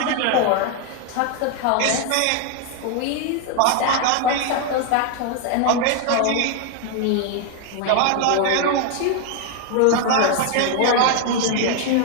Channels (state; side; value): different; both; correlation 0.01